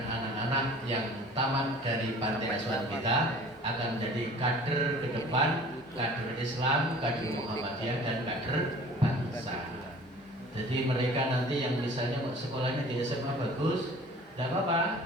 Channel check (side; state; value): both; normal; correlation 0.46